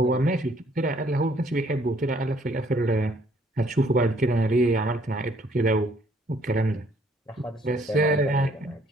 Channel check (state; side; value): normal; both; correlation 0.63